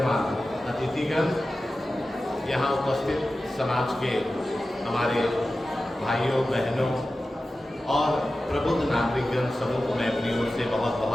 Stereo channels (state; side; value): normal; both; correlation 0.94